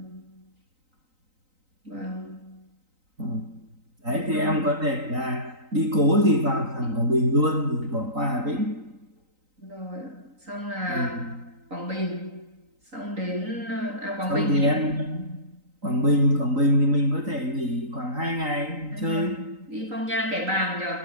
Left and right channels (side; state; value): left; late; 3.9 ms